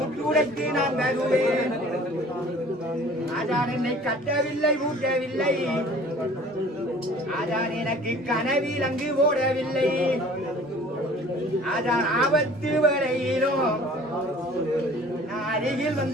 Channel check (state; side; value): normal; both; correlation 0.48